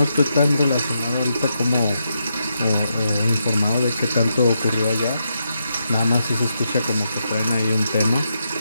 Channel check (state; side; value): inverted; both; correlation -0.83